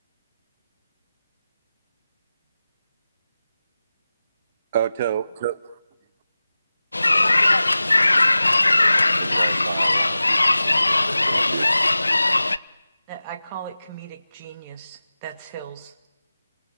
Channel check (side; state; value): both; inverted; correlation -0.96